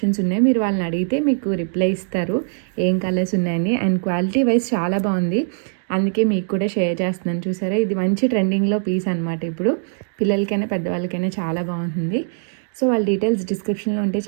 ఉన్నాయి, మీరు వాళ్ళని అడిగితే మీకు రిప్లై ఇస్తారు ఏం కలర్స్ ఉన్నాయని. అండ్ క్వాలిటీ వైజ్ చాలా బాగుంది, అందుకే మీకు కూడా షేర్ చేస్తున్నాను. చూసారా, ఇది మంచి ట్రెండింగ్లో పీస్ అనమాట, ఇప్పుడు పిల్లలకైనా పెద్దవాళ్ళకైనా చాలా బాగుంటుంది. సో వాళ్ళ డీటెయిల్స్ డిస్క్రిప్షన్లో ఉంటే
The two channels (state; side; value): silent; left; digital silence